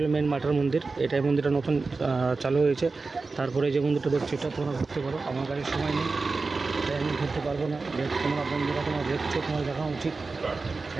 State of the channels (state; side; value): quieter; left; 4.0 dB